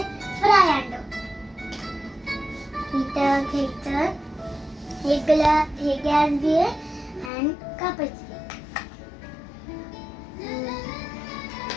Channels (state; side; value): drops out; right; at 7.3 s